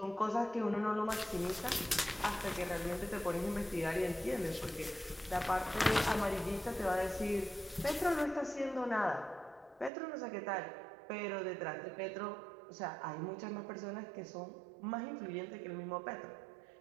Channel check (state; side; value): drops out; left; at 9.9 s